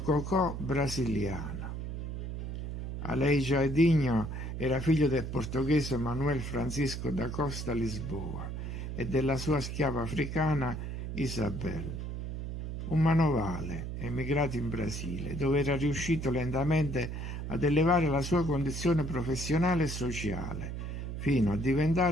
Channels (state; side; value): noise; right; hum, 5 dB below the sound